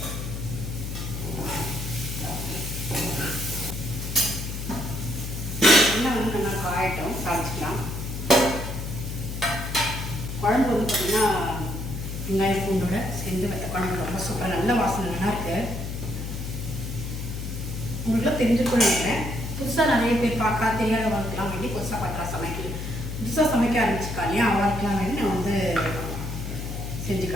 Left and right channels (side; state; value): left; noise; hum, 5 dB below the sound